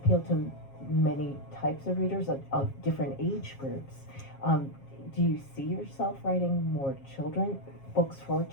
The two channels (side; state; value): right; late; 7.4 ms